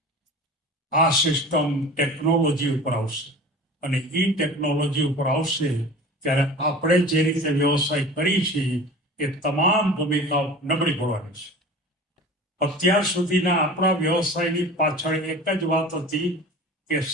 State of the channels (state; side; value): normal; both; correlation 0.38